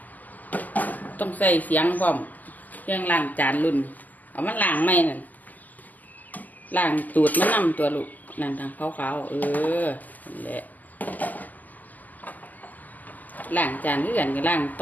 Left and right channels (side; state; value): right; late; 0.082 ms